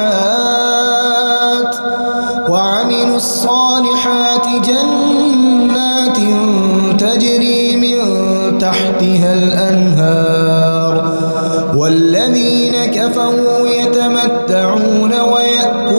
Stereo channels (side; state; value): both; inverted; correlation -1.00